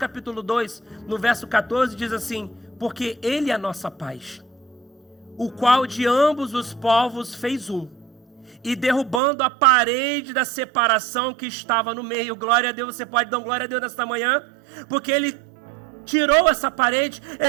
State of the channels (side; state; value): left; drops out; at 9.2 s